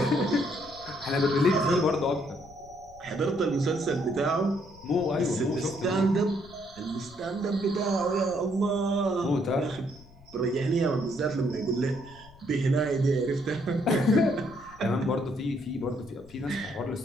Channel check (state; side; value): noise; left; rumble, 23 dB below the sound